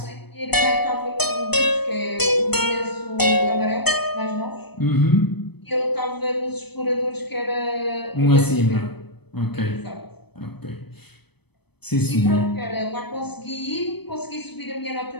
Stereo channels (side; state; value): right; late; 0.98 ms